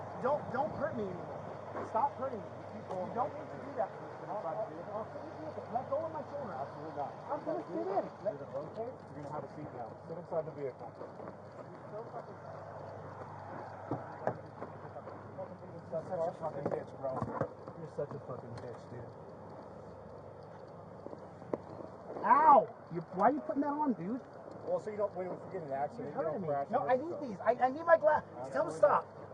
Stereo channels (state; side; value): identical; both; correlation 1.00